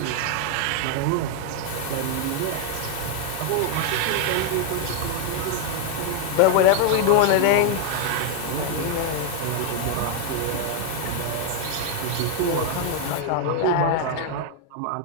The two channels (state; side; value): different; both; correlation 0.00